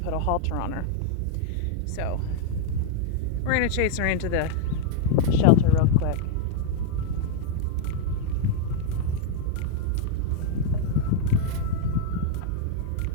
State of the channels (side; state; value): both; different; correlation 0.00